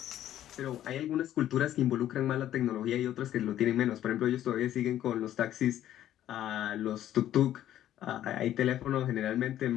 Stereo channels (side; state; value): right; quieter; 12.1 dB